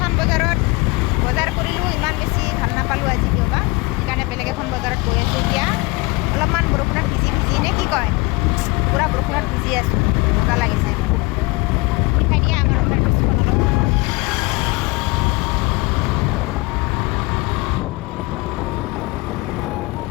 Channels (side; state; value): right; quieter; 25.1 dB